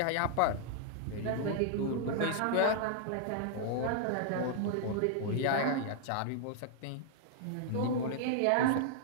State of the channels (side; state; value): both; different; correlation -0.01